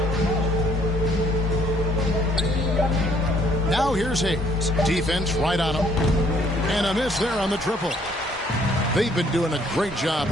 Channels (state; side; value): normal; both; correlation 0.64